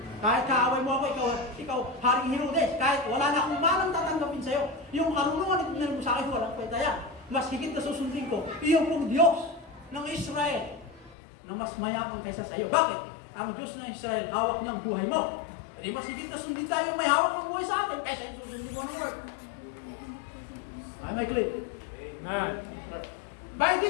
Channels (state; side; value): drops out; right; at 11.2 s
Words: Kahit kaaway mo ako, ikaw Haring Herodes, kahit wala na akong manang tatanggapin sa'yo, yung karunungan na mo sa akin, walang kwenta yan. Mas higit na susundin ko, iyong pong Diyos ng Israel, na mas mayaman kaysa sa iyo. Bakit? Ang Diyos ng Israel, hawak niya ang buhay mo. Di mas higit na sundin tayo may hawak ng buhay sa atin kaysa yung susundin mo ng Lord. Ay, may clip. By